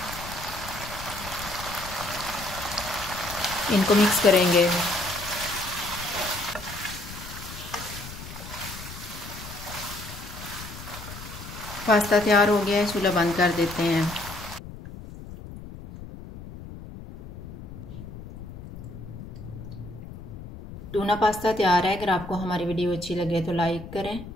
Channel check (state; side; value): noise; left; rumble, 13 dB below the sound